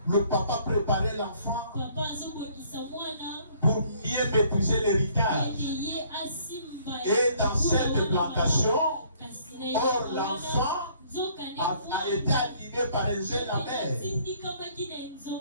Le papa préparait l'enfant pour mieux maîtriser l'héritage. Et dans cette plantation, or l'enfant a été animé par un jeune amer. Il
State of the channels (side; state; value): both; inverted; correlation -0.61